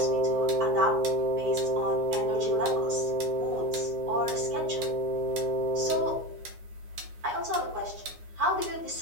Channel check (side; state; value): left; late; 9.6 ms